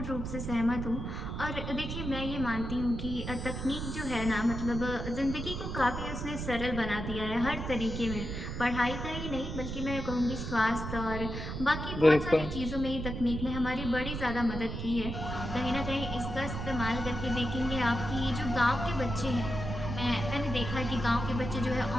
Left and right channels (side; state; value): right; noise; rumble, 5 dB below the sound